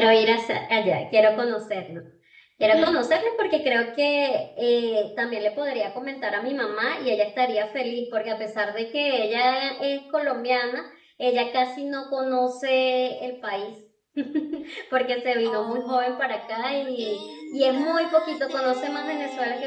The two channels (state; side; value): identical; both; correlation 1.00